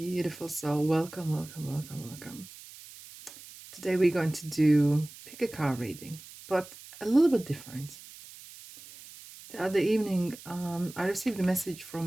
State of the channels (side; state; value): right; noise; hiss, 17 dB below the sound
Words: soul. Welcome, welcome, welcome, welcome. Today we're going to do pick a card reading, but a little bit different. The other evening, I received a message from